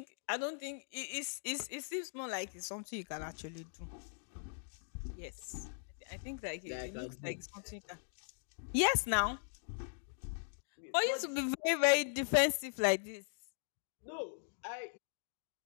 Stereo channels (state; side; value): silent; right; digital silence